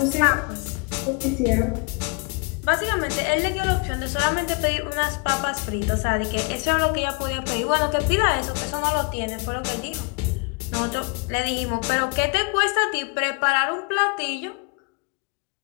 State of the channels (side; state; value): right; quieter; 32.8 dB